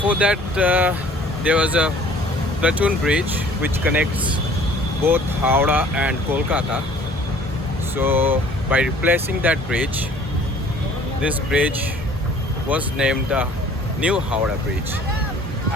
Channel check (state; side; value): normal; both; correlation 0.52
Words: that, there was a platoon bridge which connects both Howrah and Kolkata. So by replacing that bridge, this bridge was named the New Howrah Bridge.